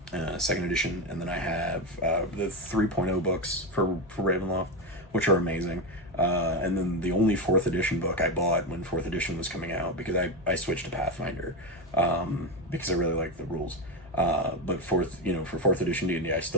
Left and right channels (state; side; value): normal; both; correlation 0.13